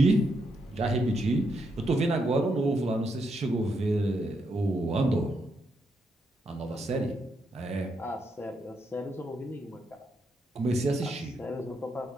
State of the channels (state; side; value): normal; both; correlation 0.80